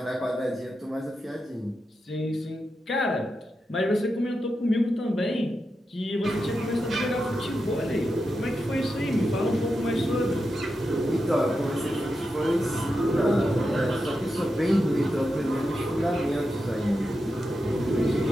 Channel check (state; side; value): normal; both; correlation 0.88